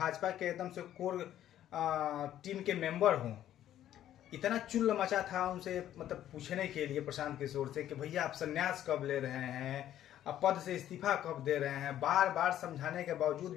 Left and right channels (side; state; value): right; quieter; 11.8 dB